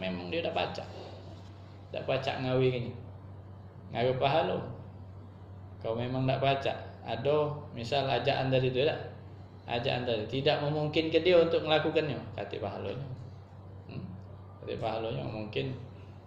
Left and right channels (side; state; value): both; identical; correlation 1.00